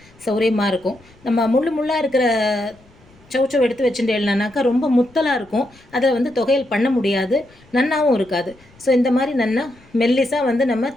சௌரியமாக இருக்கும். நம்ம முள்ளாக இருக்கிற சௌச்சௌ எடுத்து வச்சுட்டேன்னாக்கா ரொம்ப முத்தலாக இருக்கும். அதில் வந்து தொகையல் பண்ண முடியாது, நன்னாவும் இருக்காது. ஸோ இந்த மாதிரி நன்னா மெல்லிஸாக வந்து நம்ம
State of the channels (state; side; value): noise; left; rumble, 28 dB below the sound